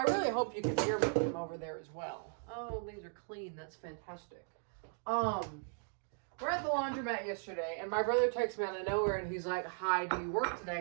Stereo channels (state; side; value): silent; left; 53 dB below the other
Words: really hope you can hear me from over there as well. Oh, these are clean. That's fantastic. We're at the laundromat yesterday, and my brother texted me out of nowhere, and he's like, "Hi, do you work